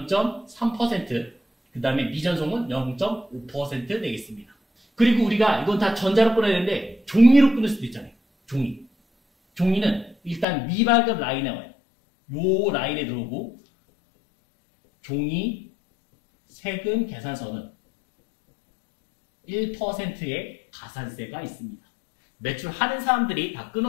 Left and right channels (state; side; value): drops out; right; at 10.5 s